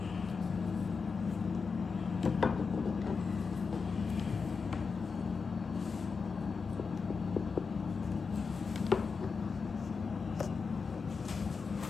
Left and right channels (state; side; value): quieter; right; 5.1 dB